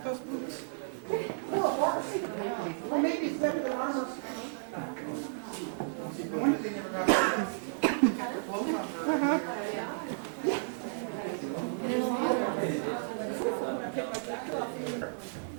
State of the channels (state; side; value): silent; left; 56 dB below the other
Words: those boots? Well, maybe it's better than ours.